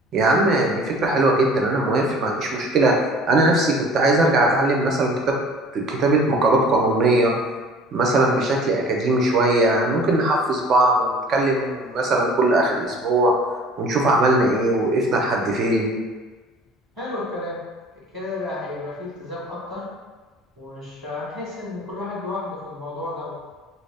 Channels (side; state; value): both; normal; correlation 0.48